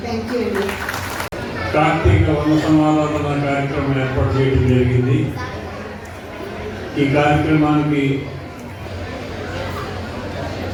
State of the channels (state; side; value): identical; both; correlation 1.00